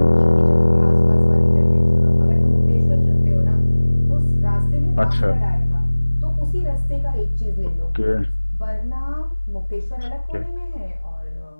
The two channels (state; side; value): inverted; both; correlation -1.00